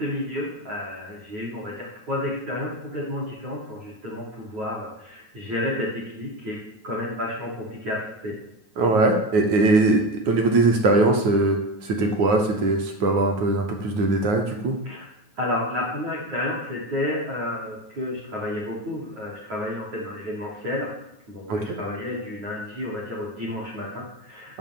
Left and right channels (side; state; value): left; late; 9.4 ms